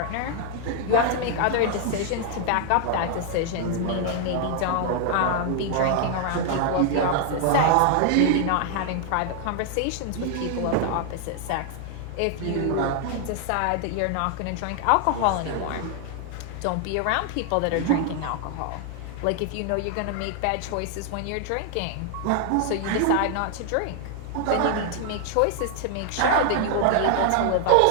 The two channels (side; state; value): both; different; correlation 0.00